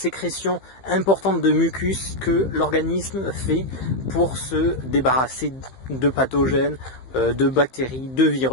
importante de mucus que l'organisme fait pour se débarrasser de pathogènes, de bactéries, de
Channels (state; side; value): late; right; 15 ms